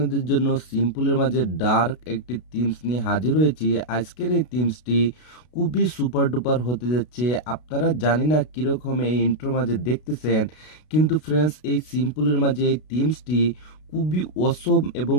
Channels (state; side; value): late; right; 32 ms